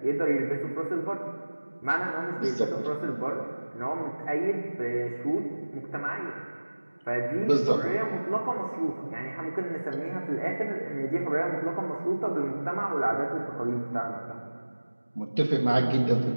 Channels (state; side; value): inverted; both; correlation -1.00